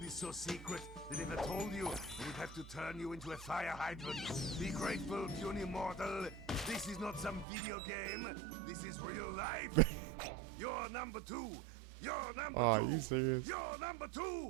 is so secret that if I told you, we'd have to turn you into a fire hydrant. Be grateful, puny mortal. This is not some video game. This is real life. You're number 2. You're number Oh, 2. you serious? You're number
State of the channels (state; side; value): drops out; left; at 7.5 s